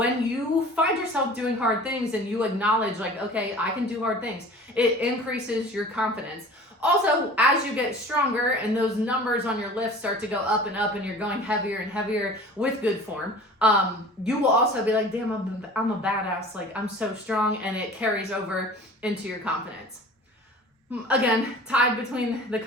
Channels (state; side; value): normal; both; correlation 0.42